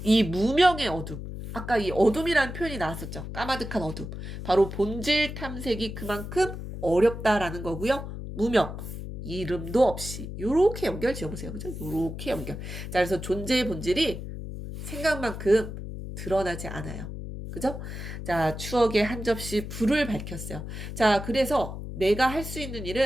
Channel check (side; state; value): left; noise; hum, 8 dB below the sound